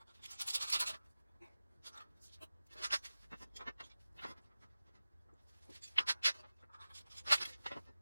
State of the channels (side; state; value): both; inverted; correlation -0.96